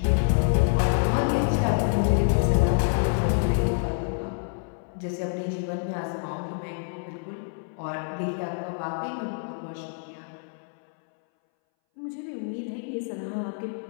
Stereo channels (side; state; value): right; silent; 60 dB below the other